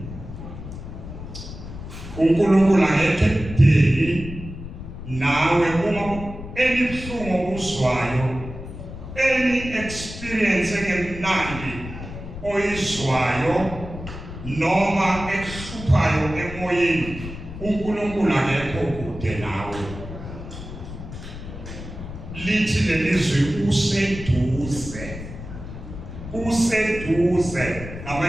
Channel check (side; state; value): left; noise; rumble, 11 dB below the sound